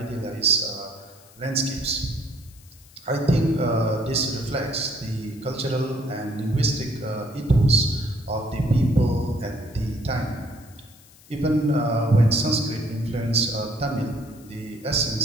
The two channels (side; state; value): left; noise; hiss, 25 dB below the sound